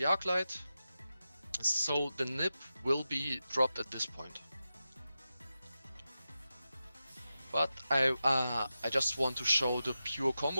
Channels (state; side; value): inverted; both; correlation -0.92